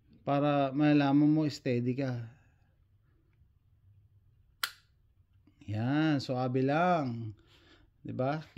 para malalaman mo steady ka. Yan, suabe lang, 'di ba?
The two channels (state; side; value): identical; both; correlation 1.00